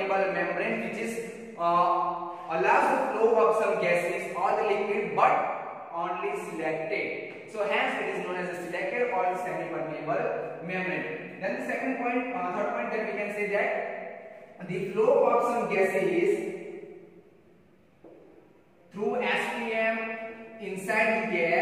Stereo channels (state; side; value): identical; both; correlation 1.00